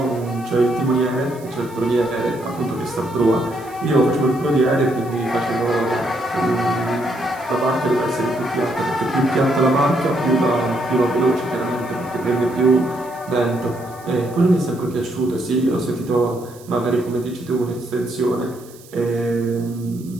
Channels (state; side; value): noise; right; hiss, 23 dB below the sound